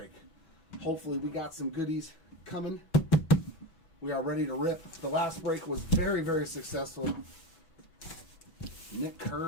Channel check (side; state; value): right; late; 6.0 ms